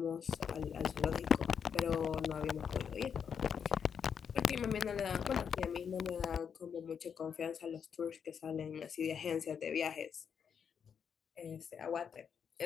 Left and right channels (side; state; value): right; quieter; 7.2 dB